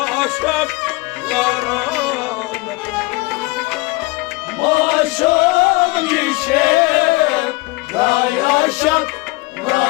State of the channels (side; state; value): right; quieter; 23.3 dB